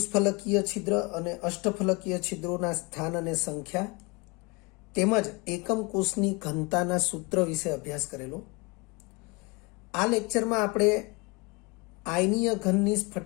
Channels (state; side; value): quieter; right; 27.7 dB